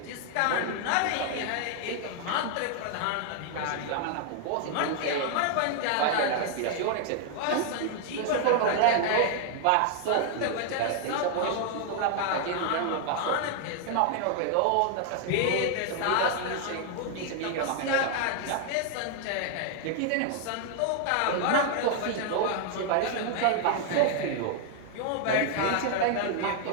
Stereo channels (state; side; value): different; both; correlation 0.00